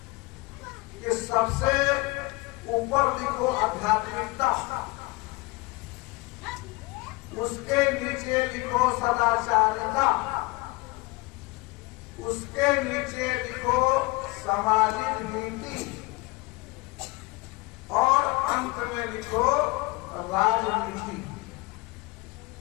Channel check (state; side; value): quieter; right; 23.5 dB